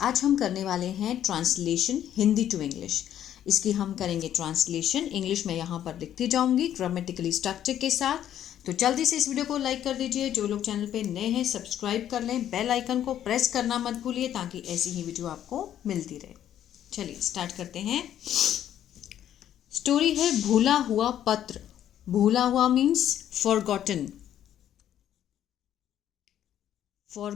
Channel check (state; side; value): quieter; right; 10.9 dB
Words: हम करने वाले हैं ट्रांसलेशन हिंदी टू इंग्लिश। इसकी हम करेंगे ट्रांसलेशन इंग्लिश में, यहाँ पर लिखती जाऊंगी ग्रामेटिकली स्ट्रक्चर के साथ। तो जल्दी से इस वीडियो को लाइक कर दीजिए। जो लोग चैनल पे नए हैं सब्सक्राइब कर लें, बेल आइकन को प्रेस करना मत भूलिए ताकि ऐसी ही वीडियो आपको मिलती रहे। चलिए स्टार्ट करते हैं। स्टोरी है भूला हुआ पत्र। भूला हुआ मीन्स फॉरगॉटन।